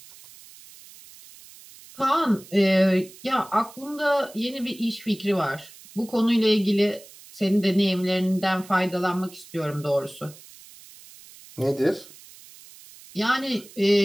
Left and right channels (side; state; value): right; noise; hiss, 21 dB below the sound